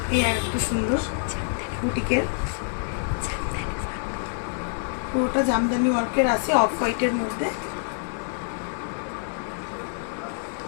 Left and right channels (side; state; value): right; silent; 61 dB below the other